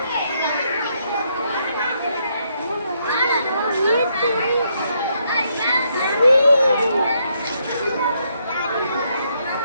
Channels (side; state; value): both; inverted; correlation -0.75